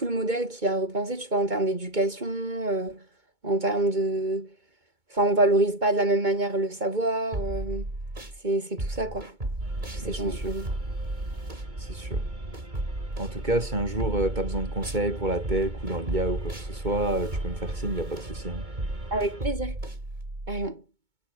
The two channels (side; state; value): left; late; 2.2 ms